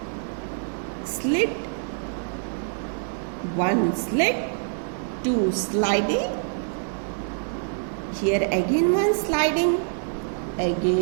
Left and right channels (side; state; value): left; silent; 61 dB below the other